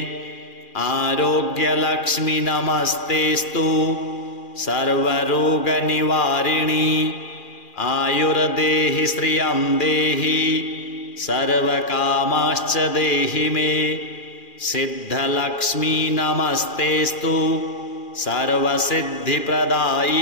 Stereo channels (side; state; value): right; late; 2.4 ms